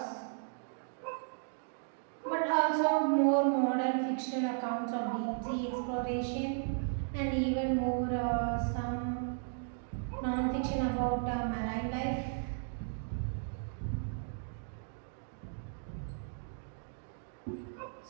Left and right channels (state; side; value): silent; left; digital silence